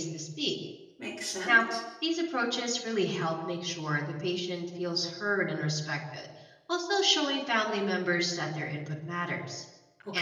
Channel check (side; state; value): both; identical; correlation 1.00